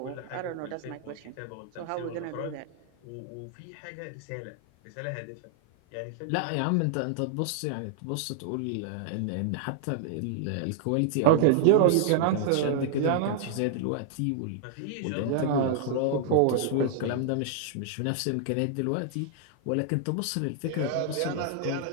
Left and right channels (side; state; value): both; different; correlation -0.01